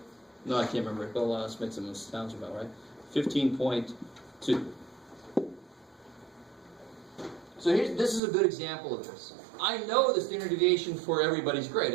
I can't remember it, but let's make some sounds about, right? 15.2. So this is a good example of this. I know the standard deviation for everybody's grade.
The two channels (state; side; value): drops out; left; at 8.2 s